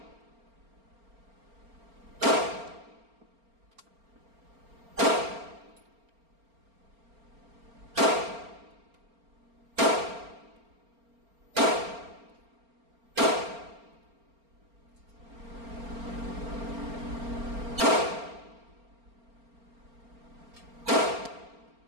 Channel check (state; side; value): late; left; 4.3 ms